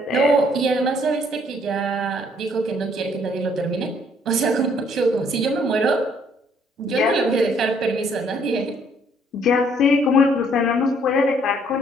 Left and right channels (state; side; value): normal; both; correlation 0.64